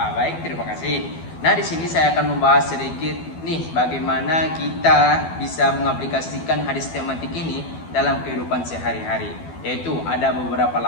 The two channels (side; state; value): right; late; 12 ms